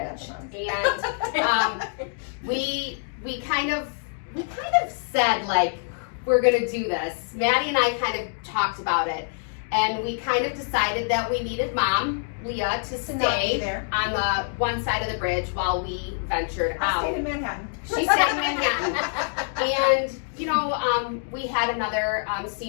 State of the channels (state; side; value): silent; right; digital silence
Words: And we kind of said, like, we're gonna do this. Maddie and I kind of talked about it, and we kind of decided that we needed Mom, Leah, to To not be stay there. on the one side of the bridge while we ventured I out. stayed in Manhattan. She stayed in Manhattan. And, we had another